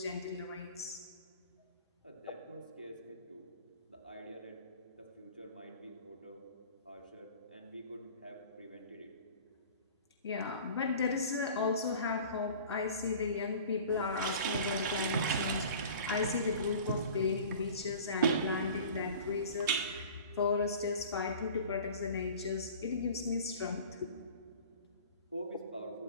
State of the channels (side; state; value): both; inverted; correlation -0.42